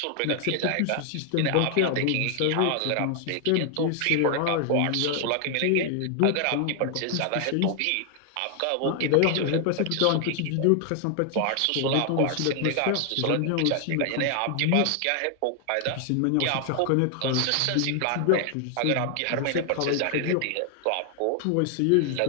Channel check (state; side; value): different; both; correlation 0.00